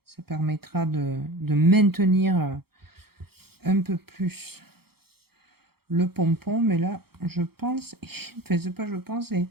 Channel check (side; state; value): left; late; 0.95 ms